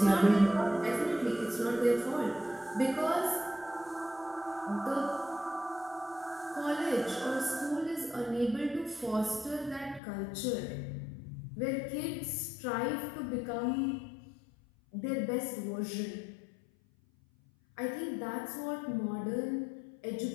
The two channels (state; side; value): drops out; right; at 10.0 s